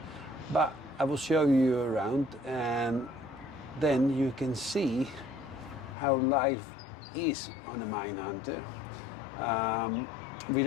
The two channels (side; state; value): right; drops out; at 6.0 s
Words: but I will show you around, and then you can see how life is on a Minehunter. We